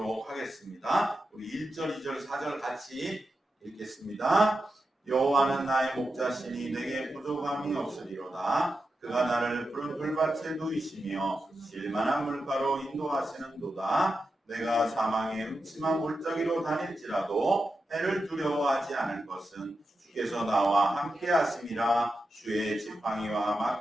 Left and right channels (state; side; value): normal; both; correlation 0.89